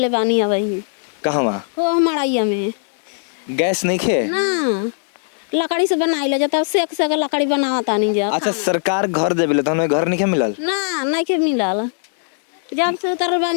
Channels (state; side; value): silent; right; 66 dB below the other